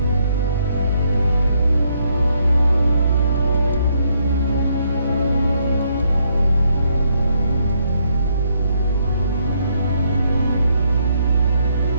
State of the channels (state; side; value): inverted; both; correlation -0.73